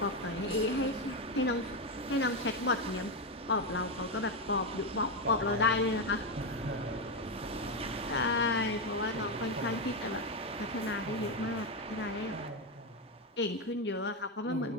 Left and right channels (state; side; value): normal; both; correlation 0.08